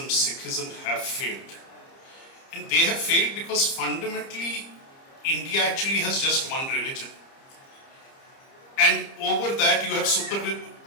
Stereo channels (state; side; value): late; right; 30 ms